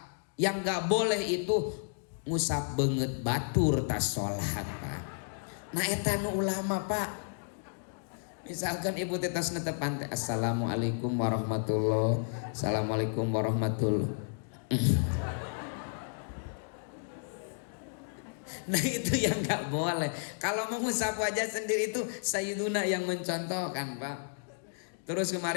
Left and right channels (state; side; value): silent; right; digital silence